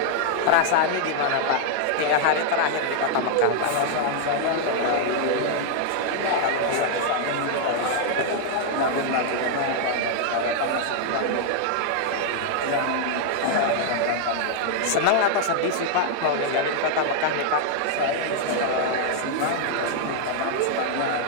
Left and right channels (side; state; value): both; different; correlation -0.01